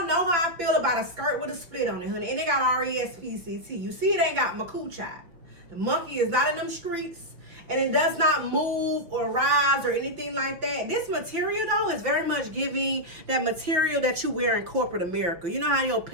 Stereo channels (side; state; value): left; late; 5.7 ms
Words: know how I feel about a skirt with a split on it, honey. And it got R-E-S-P-C-T. You see it ain't got my coochie. The monkey is not in them streets. And it does not move or rise or anything like that. This material, though, is very much giving that material that you wear in corporate America. You know how your